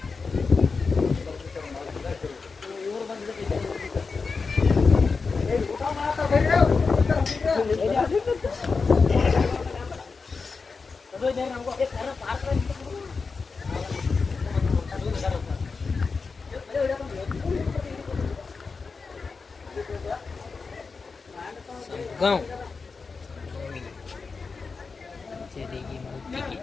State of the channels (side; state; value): right; quieter; 4.6 dB